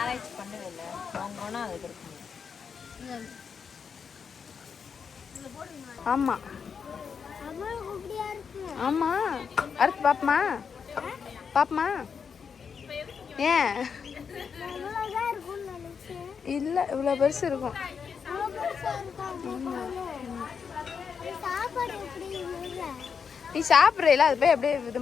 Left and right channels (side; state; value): right; quieter; 6.3 dB